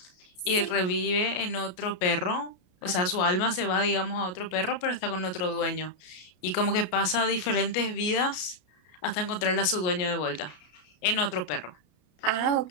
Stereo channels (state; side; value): late; right; 33 ms